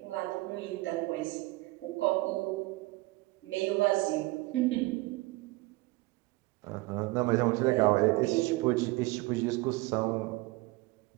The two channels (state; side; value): quieter; left; 21.7 dB